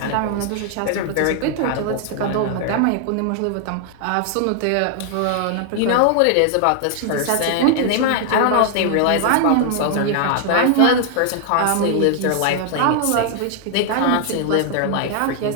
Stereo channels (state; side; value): different; both; correlation 0.00